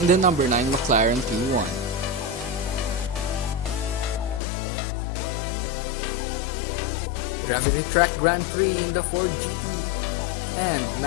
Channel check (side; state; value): right; drops out; at 4.4 s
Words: in the number 9 McLaren P1. Gravity Track Grand Prix in the Ford GT and